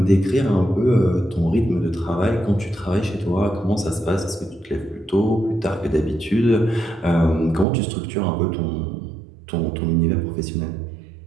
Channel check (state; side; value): drops out; left; at 7.7 s